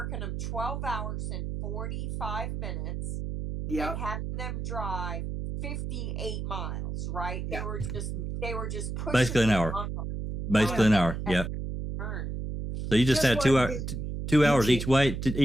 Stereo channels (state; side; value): noise; right; hum, 4 dB below the sound